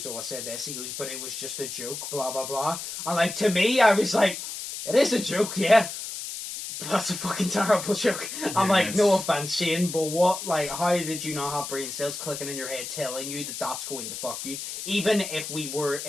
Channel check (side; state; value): left; noise; hiss, 7 dB below the sound